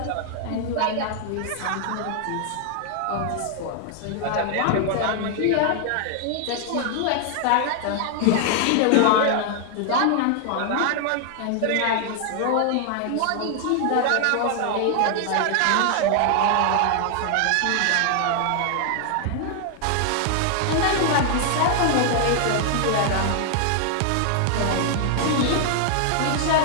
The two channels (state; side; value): different; both; correlation 0.00